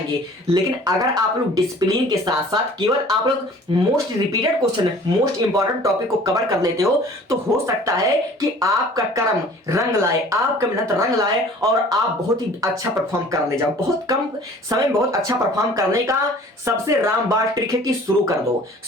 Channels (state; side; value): normal; both; correlation 0.49